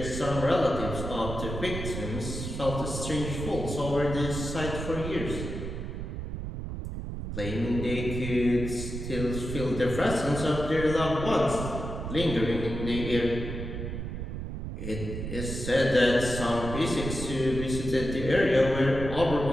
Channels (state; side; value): noise; right; rumble, 6 dB below the sound